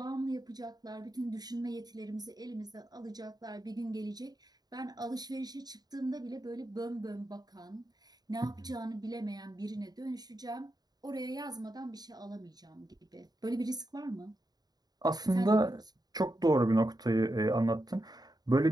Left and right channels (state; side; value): late; left; 0.19 ms